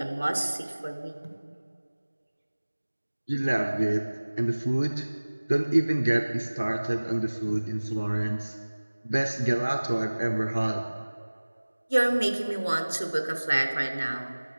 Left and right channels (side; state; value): both; inverted; correlation -1.00